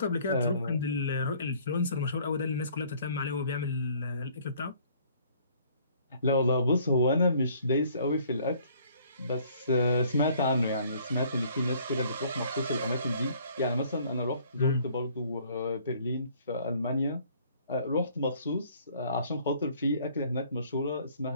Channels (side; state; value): both; inverted; correlation -0.59